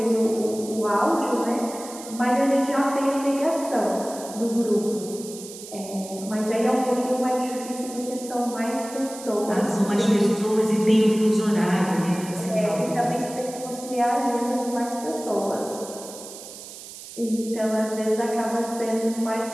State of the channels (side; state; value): right; noise; hiss, 14 dB below the sound